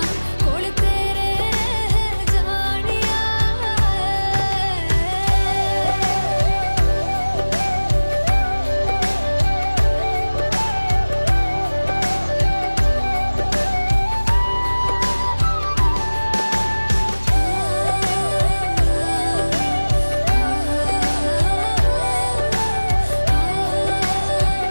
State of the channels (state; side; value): inverted; both; correlation -1.00